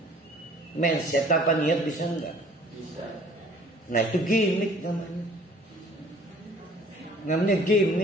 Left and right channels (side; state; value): both; normal; correlation 0.53